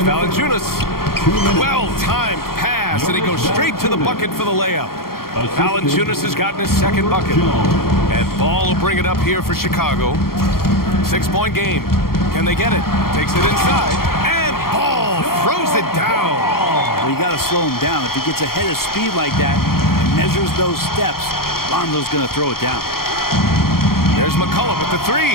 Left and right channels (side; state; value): right; late; 0.93 ms